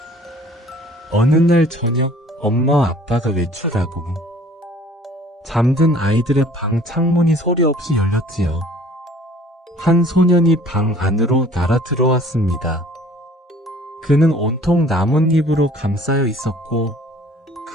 어느 날 저녁 엄마와 아빠가 외출하고 잠든 아이들의 방 창문이 소리 없이 열렸지요. 한 소년이 방 안으로 날아 들어왔습니다. 그는 온통 나뭇잎으로 감싸여 있었고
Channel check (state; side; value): normal; both; correlation 0.52